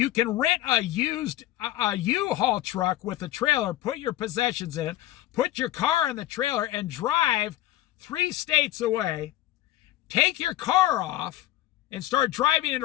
can rent a U-Haul truck with a trailer, put your possessions in it, put your car in the trailer, and drive 3 states away. Take your car off and start driving it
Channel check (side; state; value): right; quieter; 14.8 dB